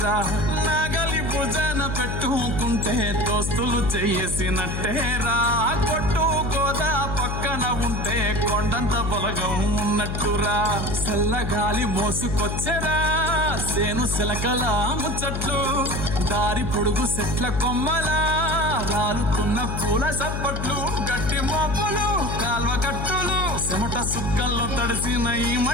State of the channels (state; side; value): noise; left; hum, 3 dB below the sound